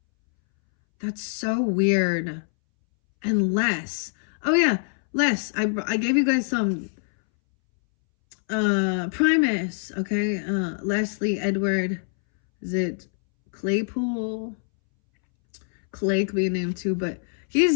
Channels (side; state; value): right; silent; 62 dB below the other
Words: That's so weird. And Les. Oh yeah, Les. I gave you guys some Primus, okay? Leslie Edward. Is it Claypool? Clay could be a name too, but